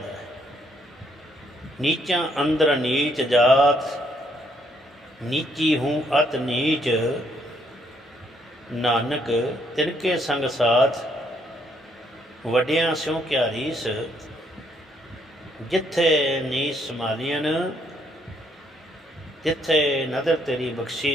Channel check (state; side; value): normal; both; correlation 0.70